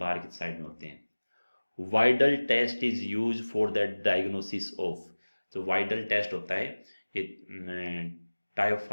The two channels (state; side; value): inverted; both; correlation -1.00